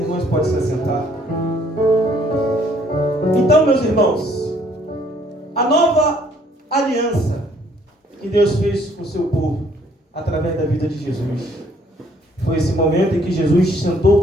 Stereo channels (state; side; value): normal; both; correlation 0.63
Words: podem se assentar. Então, meus irmãos, a nova aliança que Deus fez com o seu povo, através da vida de Jesus, foi esse momento em que Jesus sentou